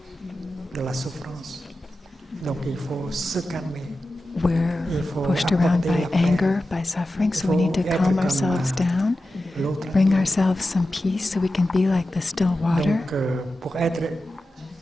de la souffrance. Donc il faut se calmer. We're pushed around by anger, by suffering, so we need to calm ourselves down, L'autre. bring ourselves some peace so we can be like the still water. Donc pour être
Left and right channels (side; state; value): both; normal; correlation 0.93